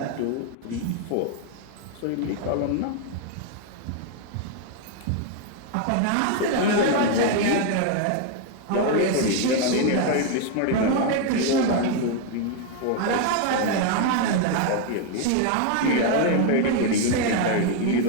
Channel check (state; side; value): different; both; correlation 0.01